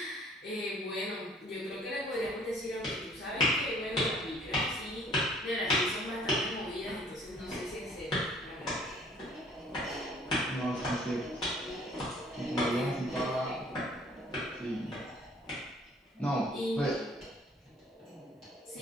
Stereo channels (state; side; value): normal; both; correlation 0.57